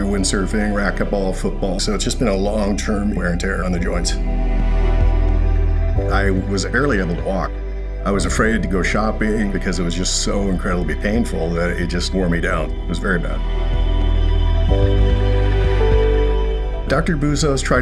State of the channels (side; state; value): both; identical; correlation 1.00